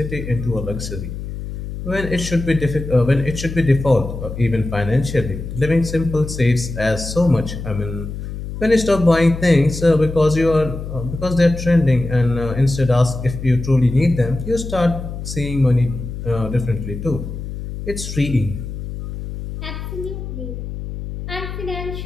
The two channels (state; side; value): noise; left; hum, 8 dB below the sound